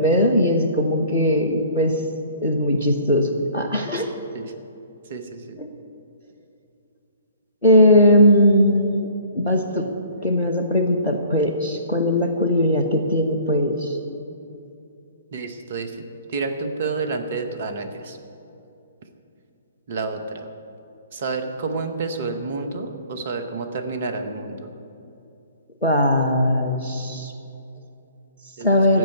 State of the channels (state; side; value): inverted; both; correlation -0.52